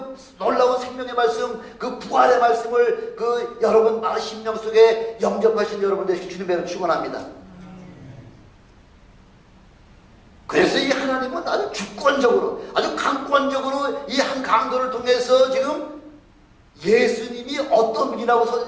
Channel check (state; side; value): identical; both; correlation 1.00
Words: 놀라운 생명의 말씀, 그 부활의 말씀을 그 여러분 심령 속에 영접하신 여러분 되시길 주님의 축원합니다. 그래서 이 하나님은 아주 주권적으로, 아주 강권적으로 이 한 강도를 통해서 지금 예수님이 어떤 분이라고